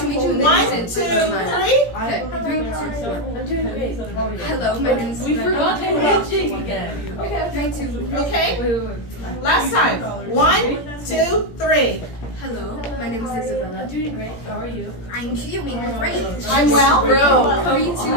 1, 2, 3. I'm doing great. Hello, my name is We forgot to handshake again. Okay, 3, 2. Okay? Last time. 1, 2, 3. Hello, my name is Isabella. I'm doing great. How are you? I'm doing great. I'm well. Bro, 3, 2,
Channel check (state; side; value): late; right; 17 ms